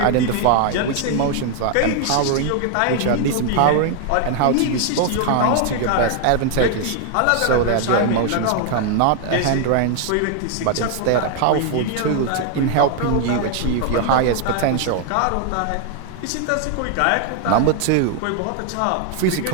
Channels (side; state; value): both; different; correlation 0.00